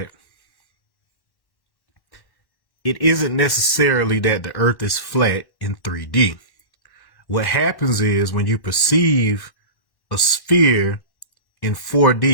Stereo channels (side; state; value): right; late; 1.1 ms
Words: it isn't necessarily that the earth is flat in 3D. What happens is when you perceive a sphere in